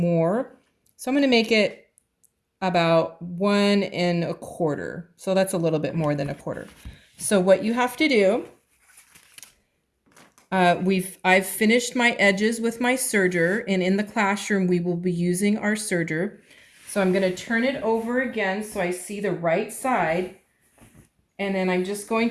So I'm going to make it about 1 1/4. So that's a little bit more than 1/4. So what you have to do, I've finished my edges with my serger, and in the classroom we will be using our serger. So I'm going to turn it over again so I see the right side, and then I'm just going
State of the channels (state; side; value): identical; both; correlation 1.00